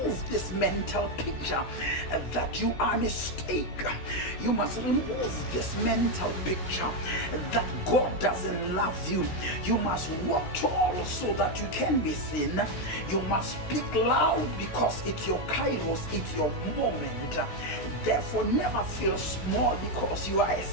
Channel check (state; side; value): late; right; 16 ms